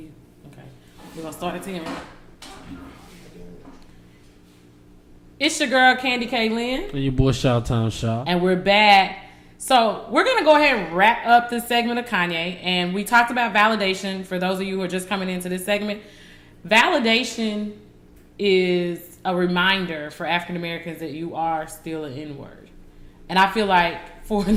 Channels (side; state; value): both; identical; correlation 1.00